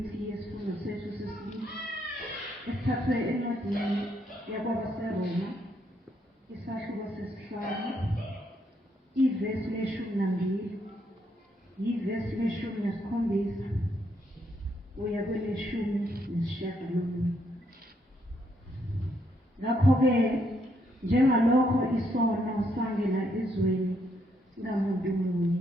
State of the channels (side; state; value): both; normal; correlation 0.74